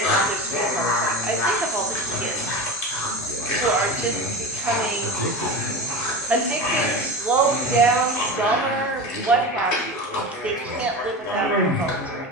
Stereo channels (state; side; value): normal; both; correlation 0.28